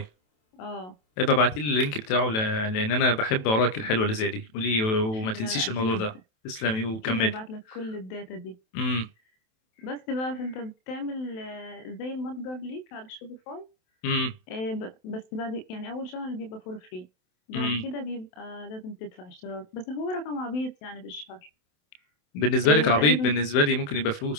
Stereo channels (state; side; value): late; right; 27 ms